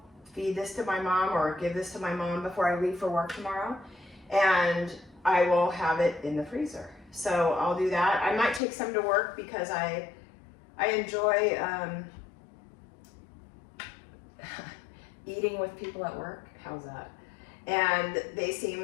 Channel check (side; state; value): right; drops out; at 8.6 s